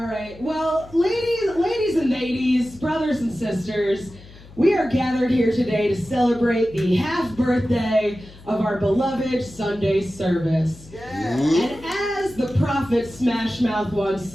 right. Well, ladies and ladies, brothers and sisters, we are gathered here today to celebrate the half birthday of our beloved Sunday service. Yeah. And as the prophet Smash Mouth once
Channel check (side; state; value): left; noise; hum, 20 dB below the sound